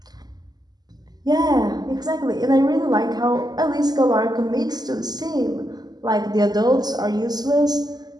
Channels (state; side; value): late; left; 0.20 ms